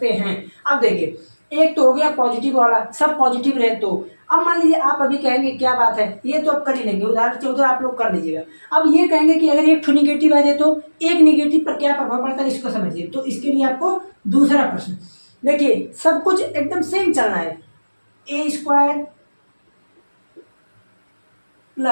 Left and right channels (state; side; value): inverted; both; correlation -1.00